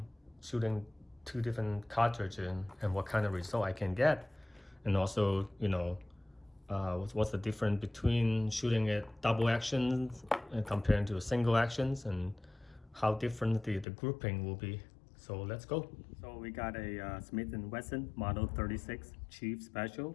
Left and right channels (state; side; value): drops out; right; at 13.9 s